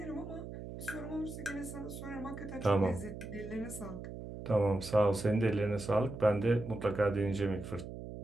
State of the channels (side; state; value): right; noise; hum, 10 dB below the sound